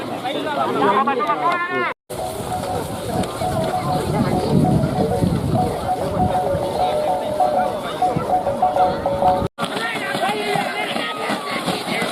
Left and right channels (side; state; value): both; identical; correlation 1.00